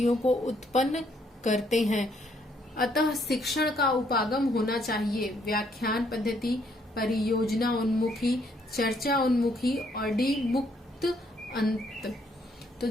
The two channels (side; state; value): both; normal; correlation 0.70